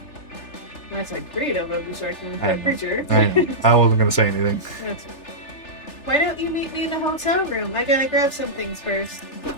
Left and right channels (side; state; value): right; late; 3.4 ms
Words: That's a creative of destruction for I- a creature. I wasn't going to say anything. That's Why don't you meet me in the hotel room? I gotta grab some things first.